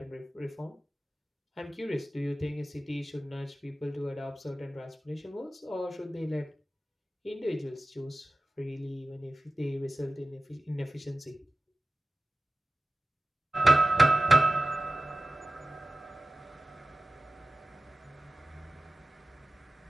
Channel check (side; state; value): both; normal; correlation 0.95